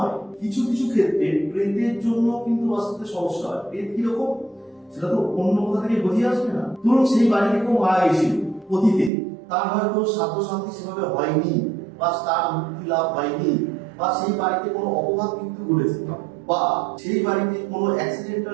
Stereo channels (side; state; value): left; drops out; at 9.1 s